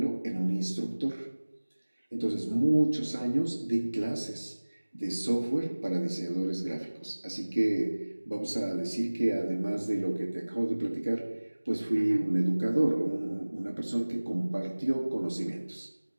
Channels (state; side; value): inverted; both; correlation -1.00